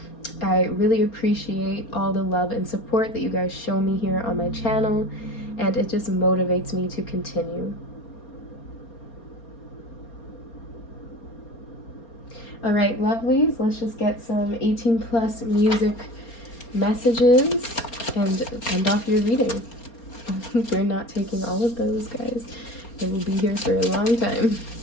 I really appreciate all the love and support that you guys show me here on my channel, and it just motivates me to continue. All right, lovelies, let's just get some 18+ music messages and end off your reading. We're not taking all of those, guys. I will be here for a long time.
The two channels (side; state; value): right; late; 4.3 ms